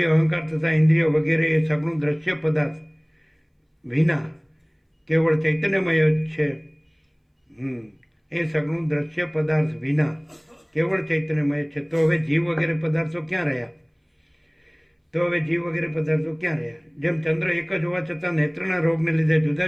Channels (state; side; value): identical; both; correlation 1.00